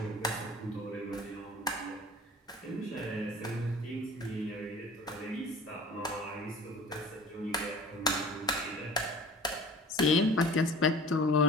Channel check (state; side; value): normal; both; correlation 0.43